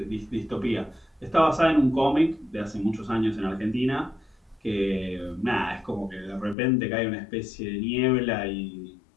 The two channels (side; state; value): right; drops out; at 6.6 s